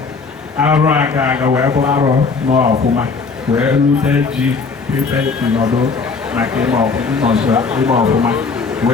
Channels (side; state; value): right; quieter; 4.6 dB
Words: arụ aga wee bụ arọ n'ọfụma wee rute ji ife nọdụ maka ime ọfụma